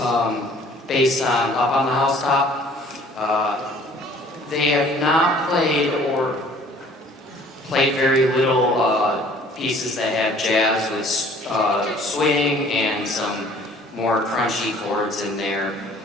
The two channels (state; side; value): normal; both; correlation 0.53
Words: based on Up on the Housetop. They have not played or played very little pieces that have jazz with swing and some more crunchy chords in there.